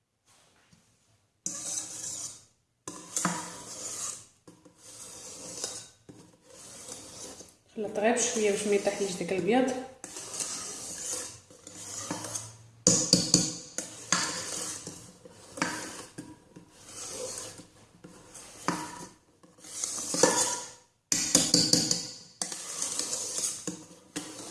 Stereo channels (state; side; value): identical; both; correlation 1.00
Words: خلط غير بشويه باش ما يطيحليش داك البياض.